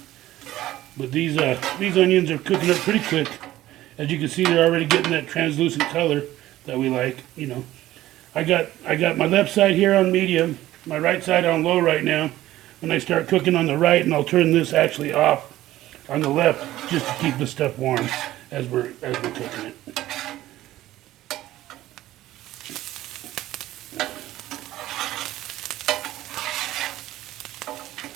But these onions are cooking up pretty quick. As you can see, they're already getting that translucent color that we like, you know. I got my left side here on medium, my right side on low right now. When I start cooking on the right, and I'll turn this actually off on the left just to keep the stuff warm as we're cooking it.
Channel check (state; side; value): quieter; left; 15.0 dB